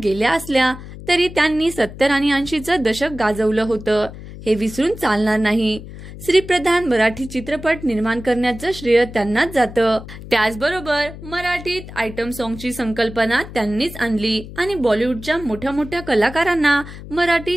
गेल्या असल्या तरी त्यांनी 70 आणि 80चं दशक गाजवलं होतं, हे विसरून चालणार नाही। श्रीप्रधान मराठी चित्रपट निर्माण करण्याचं श्रेय त्यांनाच जातं। त्याचबरोबर मराठीत आयटम सॉंगची संकल्पना त्यांनीच आणली आणि बॉलिवूडच्या मोठ्या मोठ्या कलाकारांना मराठी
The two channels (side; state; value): left; noise; hum, 14 dB below the sound